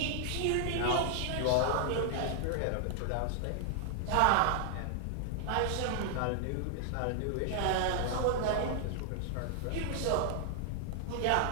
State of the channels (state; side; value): different; both; correlation 0.00